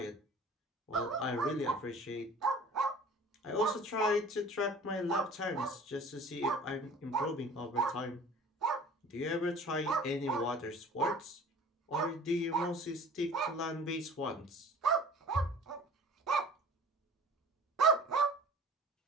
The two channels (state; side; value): normal; both; correlation 0.46